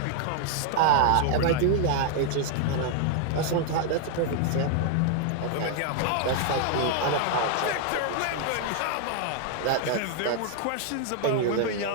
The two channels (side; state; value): both; different; correlation 0.00